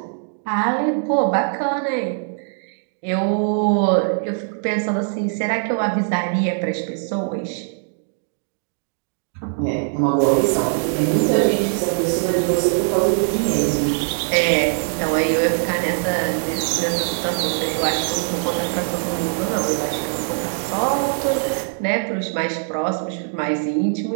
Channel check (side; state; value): left; silent; digital silence